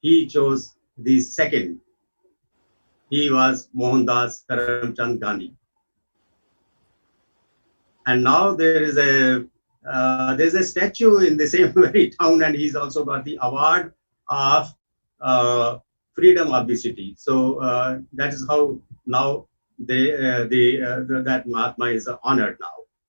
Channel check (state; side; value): inverted; both; correlation -1.00